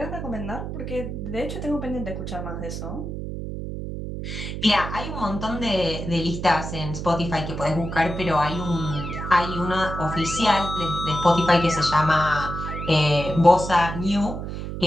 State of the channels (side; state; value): right; noise; hum, 6 dB below the sound